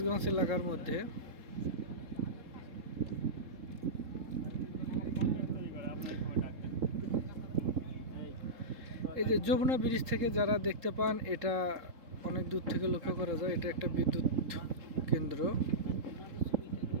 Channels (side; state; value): left; late; 3.7 ms